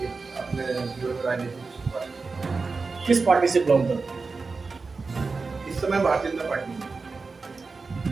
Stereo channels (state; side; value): quieter; left; 4.3 dB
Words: अपने जीवन में राजनीति की शुरुआत की। किस पार्टी से बिलोंग करते हैं? इस समय भारतीय जनता पार्टी में।